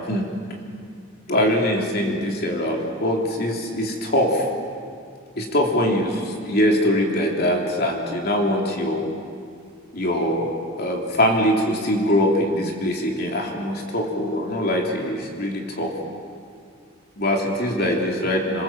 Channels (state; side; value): normal; both; correlation 0.26